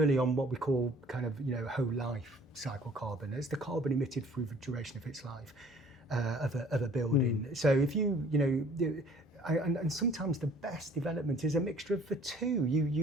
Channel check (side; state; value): both; normal; correlation 0.54